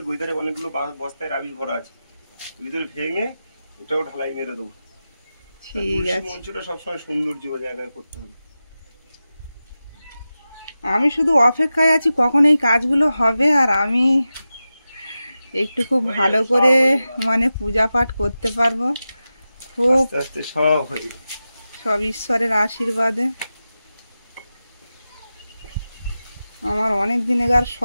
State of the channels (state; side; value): inverted; both; correlation -0.93